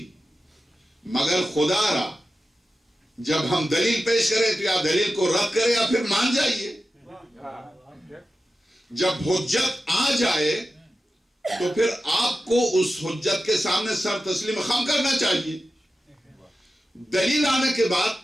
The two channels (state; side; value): normal; both; correlation 0.93